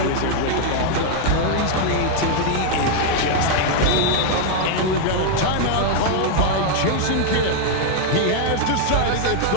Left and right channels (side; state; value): both; different; correlation 0.00